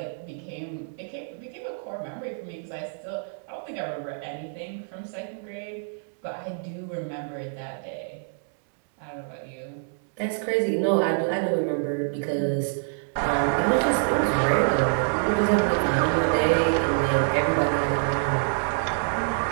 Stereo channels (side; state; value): left; silent; digital silence